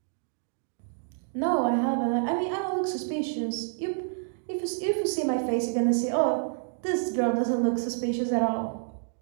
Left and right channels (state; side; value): silent; left; digital silence